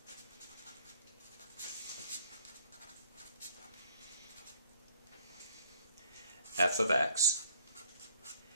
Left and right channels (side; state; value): both; inverted; correlation -0.60